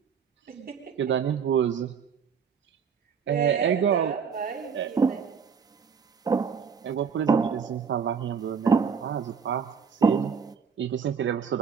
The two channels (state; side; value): quieter; left; 6.5 dB